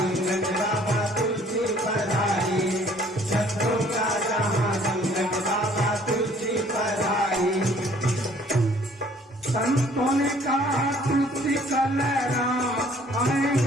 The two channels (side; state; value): both; normal; correlation 0.58